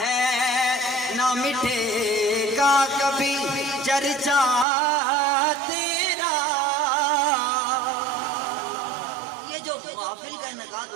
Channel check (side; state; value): left; drops out; at 4.7 s